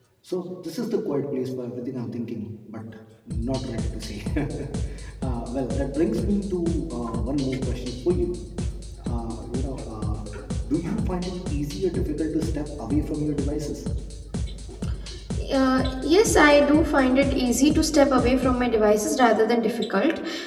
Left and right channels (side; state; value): both; identical; correlation 1.00